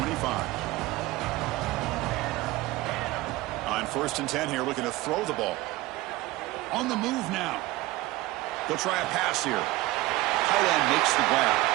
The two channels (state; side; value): quieter; left; 18.7 dB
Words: On 1st and 10 here, looking to throw the ball. On the move now. They'll try a pass here. Tight end makes the grab.